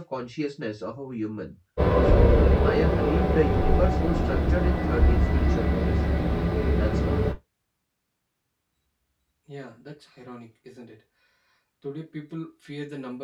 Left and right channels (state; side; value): identical; both; correlation 1.00